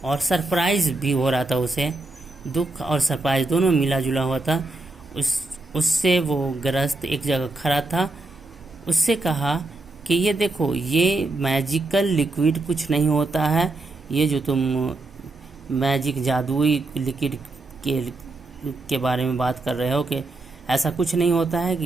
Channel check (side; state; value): left; quieter; 3.1 dB